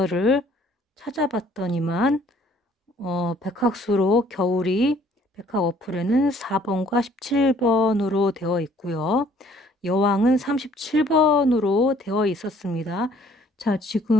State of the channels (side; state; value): both; normal; correlation 0.59